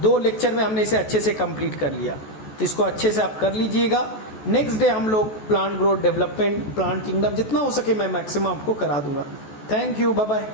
2 लेक्चर में हमने इसे अच्छे से कंप्लीट कर लिया, तो इसको अच्छे से आप कर लीजिएगा। नेक्स्ट डे हम लोग plant growth development, plant kingdom, जितना हो सके मैं मैक्सिमम आपको करा दूंगा। Thank you, bye bye.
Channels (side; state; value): right; late; 14 ms